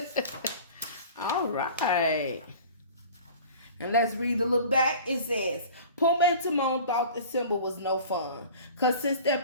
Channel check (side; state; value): both; inverted; correlation -0.42